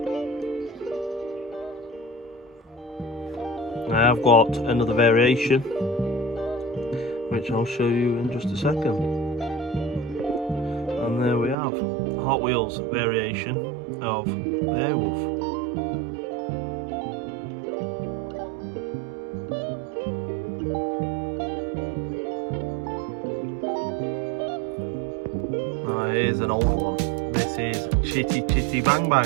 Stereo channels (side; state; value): left; drops out; at 11.6 s